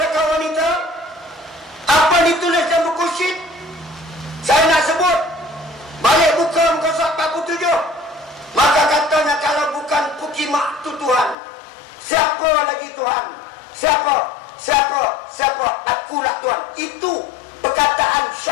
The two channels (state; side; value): drops out; right; at 11.4 s